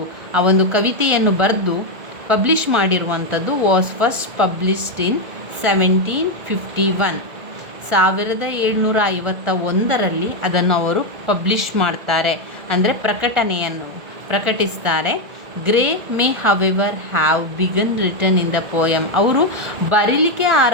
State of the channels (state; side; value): late; left; 1.4 ms